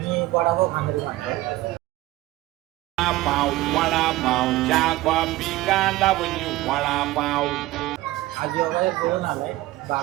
मी वडापाव खाणारी माणसं Wadapaw, wadapaw, Jaguar, Picanda, when you wadapaw. आज वगैरे बोलून आलाय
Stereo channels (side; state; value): left; quieter; 17.6 dB